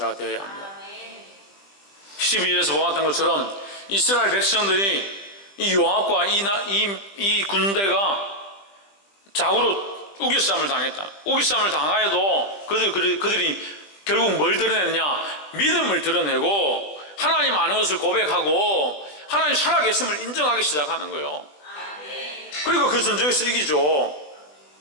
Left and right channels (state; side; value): late; right; 20 ms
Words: 되어야 합니다. 12절에서 보았던 것처럼 이스라엘 백성들이 이 요압과 이 군대가 좌우로 우겨싸움을 당했다. 우겨싸움을 당하여도 그들이 결국 뭘 드러내느냐? 믿음을 드러내고 하나님 아는 것을 고백하고 하나님 살아계심을 인정하기 시작하는 거예요. 그리고 그 전쟁에서 이기죠.